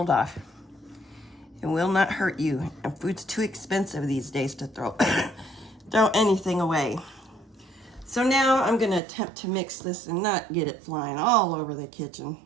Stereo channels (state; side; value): drops out; left; at 9.0 s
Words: off. It will not hurt you. And food's too expensive these days to throw anything away. So now I'm gonna attempt to mix this and not get it flying all over the kitchen.